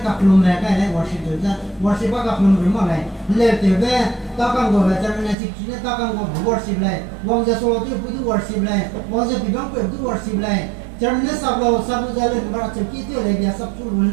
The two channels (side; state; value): left; drops out; at 5.4 s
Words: các lùm này cái này worship các lùm run mà này lệ thế về ta càng gọi là cho nên chỉ này ta càng gọi worship này vong giờ số thì cũng worship này vong giờ bị băng cũng worship này cho nên sắp giờ lên mà chỉ kỹ tiêu này bây sắp chút